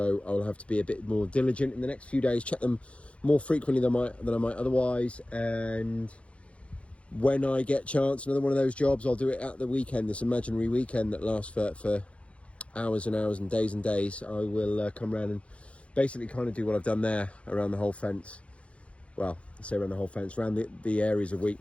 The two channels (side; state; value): right; late; 0.062 ms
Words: I'll have to be a bit more diligent in the next few days, check them more frequently than I might otherwise. And when I get chance, another one of those jobs, I'll do it at the weekend, this imaginary weekend that lasts for hours and hours and days. I will come around and basically kind of do what I've done there around the whole fence. Well, I say around the whole fence, around the areas of